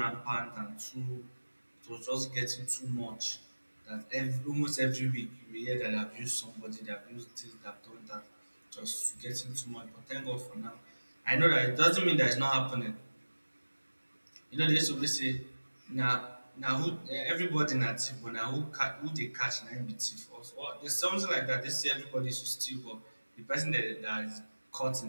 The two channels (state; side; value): inverted; both; correlation -1.00